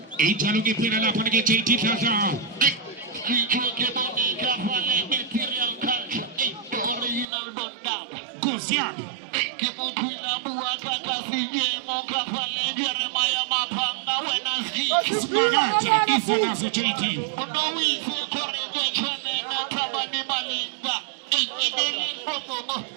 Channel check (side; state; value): left; drops out; at 7.2 s